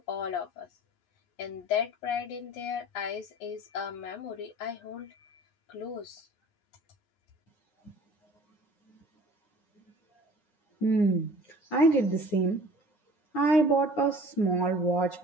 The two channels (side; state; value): right; late; 9.7 ms